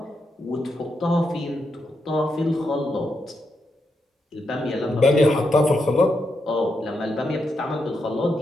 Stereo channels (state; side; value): normal; both; correlation 0.83